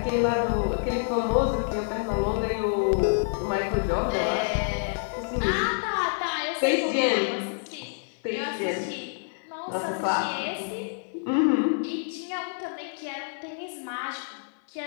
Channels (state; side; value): silent; right; 60 dB below the other